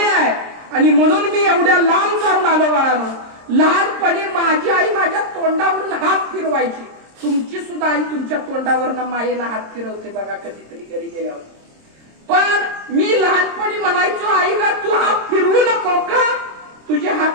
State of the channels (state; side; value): late; left; 26 ms